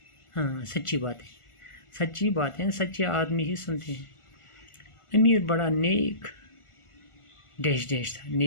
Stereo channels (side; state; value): right; late; 1.5 ms